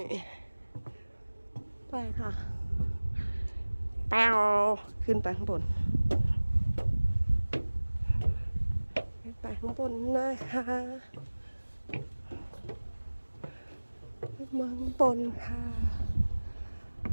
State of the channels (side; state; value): both; inverted; correlation -1.00